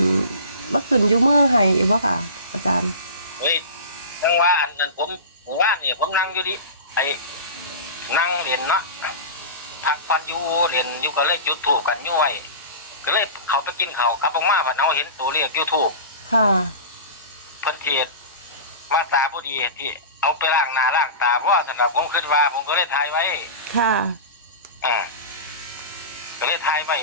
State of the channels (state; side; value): inverted; both; correlation -0.30